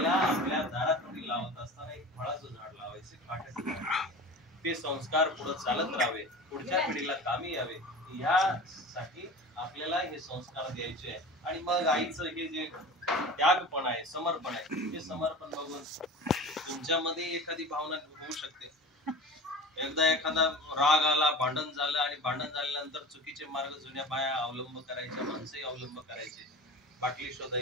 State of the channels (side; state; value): both; normal; correlation 0.35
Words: आपल्या दारात लावत असताना एक फळाचं झाड लावायचे, काट्याचं झाड. ते संस्कार पुढे चालत राहावे, पुढच्या पिढीला कामी यावे, यासाठी आपल्याला हे संस्कार द्यायचे. आणि मग आईचं हे जे त्यागपण आहे, समर्पण आहे, ते समर्पण बघून तुमच्यामध्ये एखादी भावना होऊ शकते. एकदा एखादा राग आला, भांडण झालं आणि भांडण झाल्यानंतर चुकीचे मार्ग जुन्या बाया अवलंब करायच्या, माणसंही अवलंब करायचे. बाटली